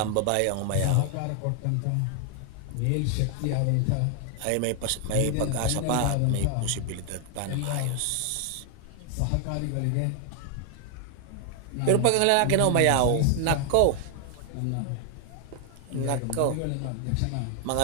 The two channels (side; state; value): both; different; correlation 0.00